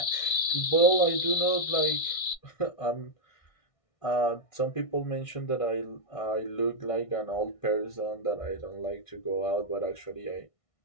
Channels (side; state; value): right; late; 1.6 ms